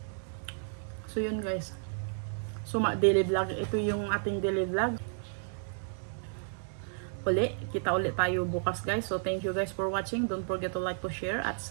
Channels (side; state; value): left; silent; digital silence